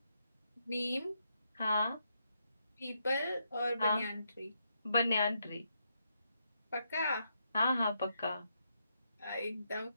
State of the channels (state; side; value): inverted; both; correlation -0.80